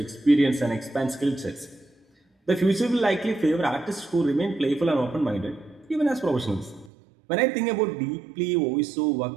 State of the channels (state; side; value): drops out; left; at 6.9 s